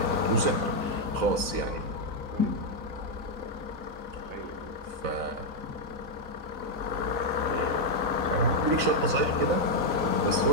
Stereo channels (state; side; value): late; left; 4.0 ms